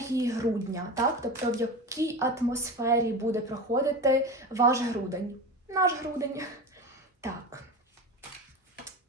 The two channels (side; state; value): both; normal; correlation 0.27